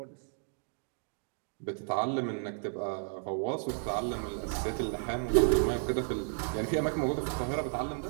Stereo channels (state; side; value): silent; left; digital silence